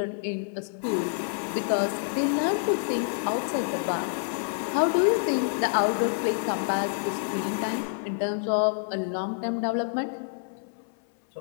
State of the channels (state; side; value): silent; right; 60 dB below the other